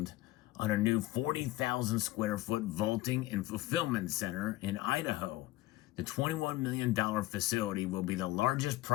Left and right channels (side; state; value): right; quieter; 17.5 dB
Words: on a new 40,000 square foot vaulting and fulfillment center in Idaho. The $21 million facility will be the largest